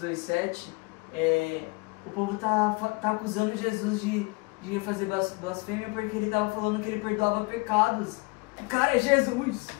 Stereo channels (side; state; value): right; quieter; 27.9 dB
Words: 2,7, o povo tá acusando Jesus de fazer blasfêmia porque ele tava falando que ele perdoava pecados. O cara é Jesus!